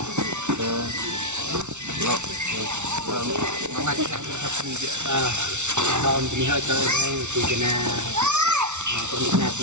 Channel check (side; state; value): left; late; 0.83 ms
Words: nó ngay cái thập gì vậy còn thì hơi chơi đây thì cái nào còn những nào